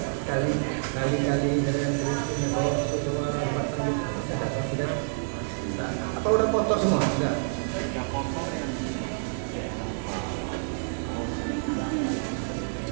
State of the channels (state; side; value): silent; left; digital silence